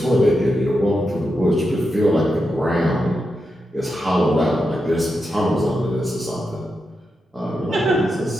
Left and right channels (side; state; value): both; normal; correlation 0.87